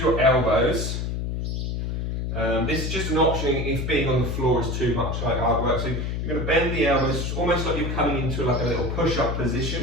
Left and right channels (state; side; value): noise; left; hum, 2 dB below the sound